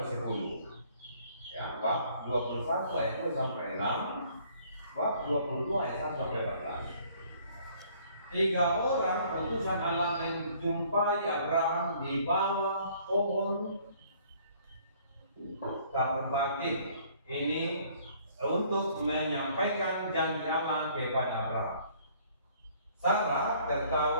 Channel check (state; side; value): inverted; both; correlation -0.59